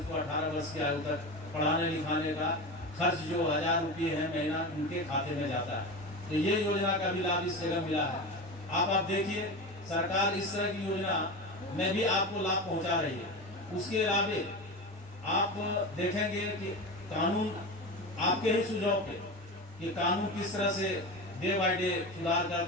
18 वर्ष की आयु तक पढ़ाने लिखाने का खर्च जो 1000 रुपये है महीना उनके खाते में जाता है। तो ये योजना का भी लाभ इस जगह मिला है। आप देखिए सरकार इस तरह की योजना में भी आपको लाभ पहुंचा रही है। उसके अलावे आप देखेंगे कि कानून आपके ही सुझाव पे कि कानून किस तरह से डे बाय डे सुधार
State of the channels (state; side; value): normal; both; correlation 0.25